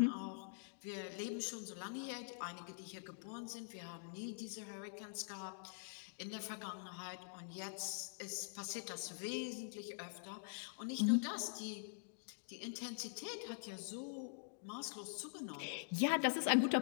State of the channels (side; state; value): right; silent; digital silence